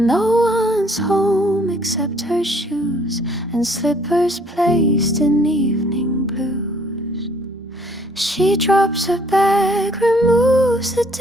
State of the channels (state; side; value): normal; both; correlation 0.61